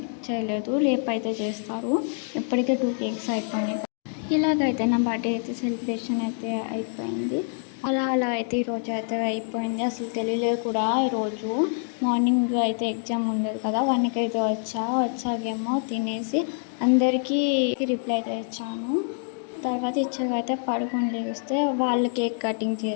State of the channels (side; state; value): right; silent; 61 dB below the other